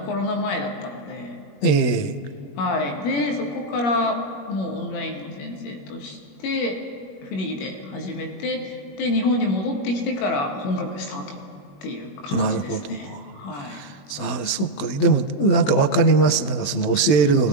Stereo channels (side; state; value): right; late; 20 ms